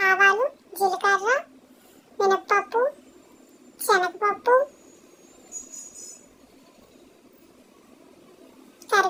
జీలకర్ర, మినప్పప్పు, శనగపప్పు,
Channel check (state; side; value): identical; both; correlation 1.00